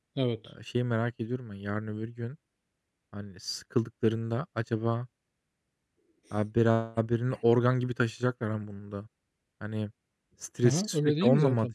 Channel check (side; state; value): both; identical; correlation 1.00